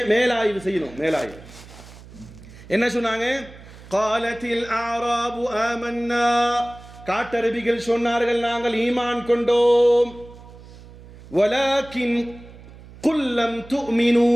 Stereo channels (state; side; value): noise; right; hum, 19 dB below the sound